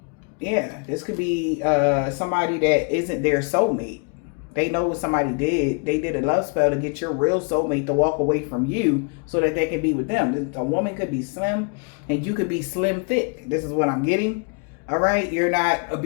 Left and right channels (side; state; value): right; quieter; 36.0 dB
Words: Yeah, this could be somebody that isn't their soulmate. They know what somebody did. They did a love spell to get your real soulmate to walk away from you so that they can be with them. A woman could be slim and you could be slim thick. This is what I'm getting. All right, you're not a